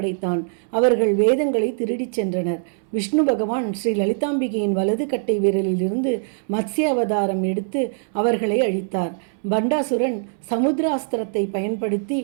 அவர்கள் வேதங்களை திருடிச் சென்றனர். விஷ்ணு பகவான் ஸ்ரீ லலிதாம்பிகையின் வலது கட்டை விரலிலிருந்து மத்ஸ்ய அவதாரம் எடுத்து அவர்களை அழித்தார். பண்டாசுரன் சமுத்திராஸ்திரத்தை பயன்படுத்தி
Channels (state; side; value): silent; left; 64 dB below the other